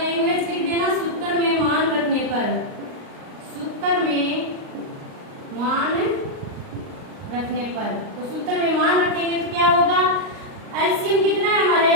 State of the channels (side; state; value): left; late; 38 ms